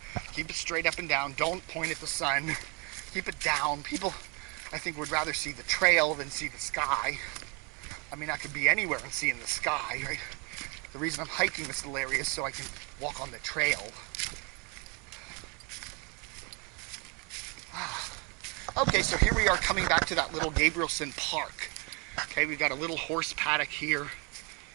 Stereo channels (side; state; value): left; quieter; 30.6 dB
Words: keep it straight up and down, don't point at the sun, keep it down. People, I think, would rather see the trail than see the sky. I mean, I could be anywhere and seeing the sky, right? The reason I'm hiking this little area is so I can walk on the trail. Okay, so here we are coming back to that little Gabrielson Park. Okay, we've got a little horse paddock here.